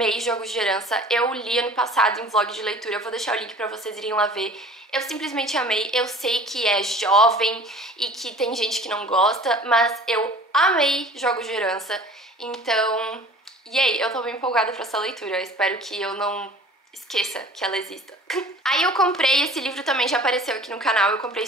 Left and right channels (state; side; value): normal; both; correlation 0.46